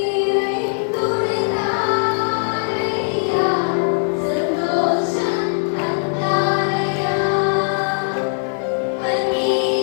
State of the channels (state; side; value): silent; right; digital silence